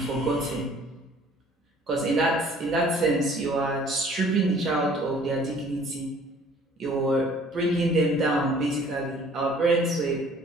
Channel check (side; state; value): both; normal; correlation 0.54